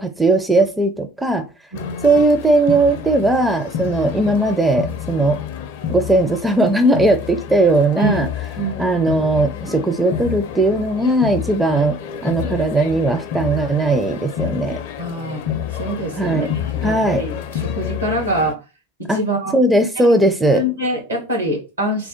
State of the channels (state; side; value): normal; both; correlation 0.56